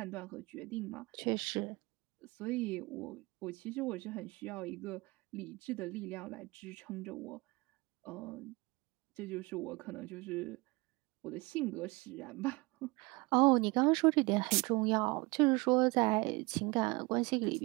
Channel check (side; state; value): left; quieter; 25.1 dB